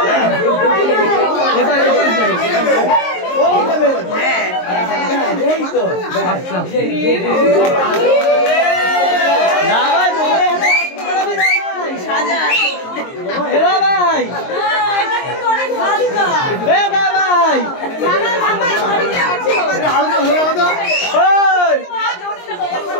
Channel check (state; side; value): late; right; 22 ms